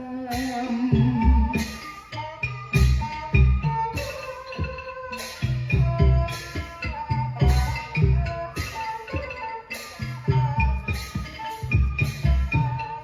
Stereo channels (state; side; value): identical; both; correlation 1.00